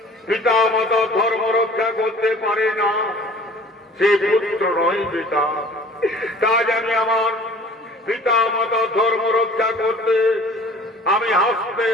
পিতা মাতা ধর্ম রক্ষা করতে পারে না, সে পুত্র নয় পিতা। তাই আমি আমার পিতা মাতা ধর্ম রক্ষা করতে আমি হাসতে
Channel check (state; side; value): normal; both; correlation 0.48